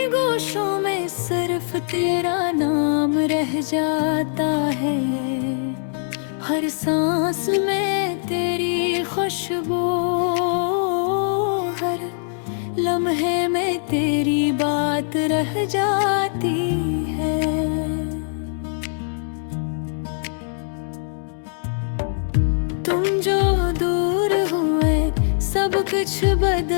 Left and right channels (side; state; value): right; silent; digital silence